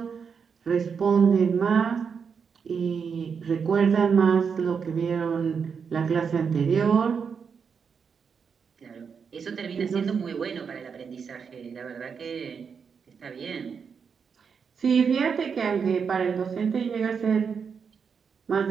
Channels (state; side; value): quieter; left; 6.3 dB